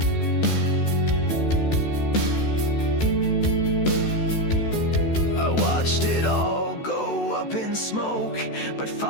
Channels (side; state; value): right; late; 14 ms